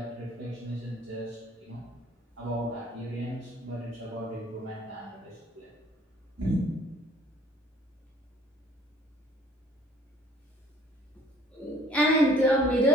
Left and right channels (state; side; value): normal; both; correlation 0.57